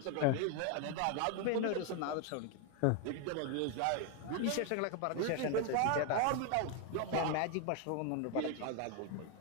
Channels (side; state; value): both; different; correlation 0.01